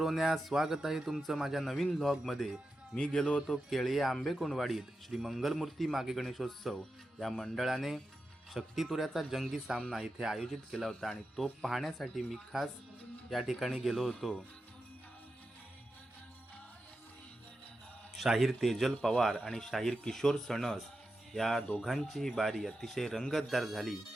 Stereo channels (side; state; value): both; normal; correlation 0.90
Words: स्वागत आहे तुमचं माझ्या नवीन व्लॉगमध्ये। मी गेलो होतो केळी आंबे कोणवाडीत श्री मंगलमूर्ती मागे गणेशोत्सव या मंडळाने शक्तितुऱ्याचा जंगी सामना इथे आयोजित केला होता आणि तो पाहण्यासाठी मी खास या ठिकाणी गेलो होतो। शाहीर तेजल पवार आणि शाहीर किशोर सणस या दोघांची बारी अतिशय रंगतदार झाली।